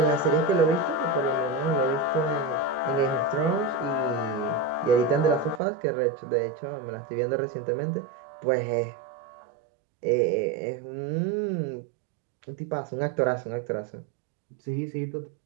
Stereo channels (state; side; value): drops out; left; at 5.6 s